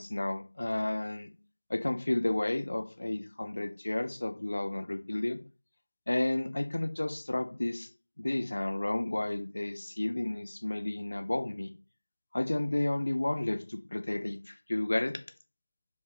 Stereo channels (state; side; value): inverted; both; correlation -1.00